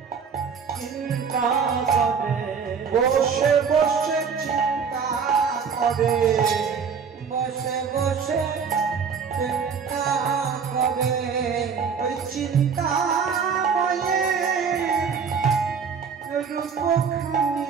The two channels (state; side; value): quieter; left; 6.2 dB